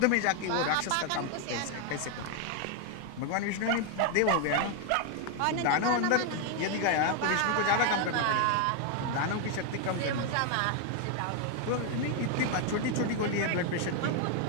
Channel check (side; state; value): both; different; correlation 0.01